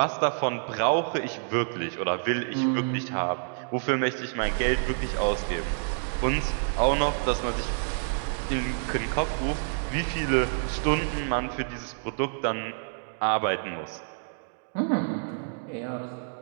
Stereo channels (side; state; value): left; silent; digital silence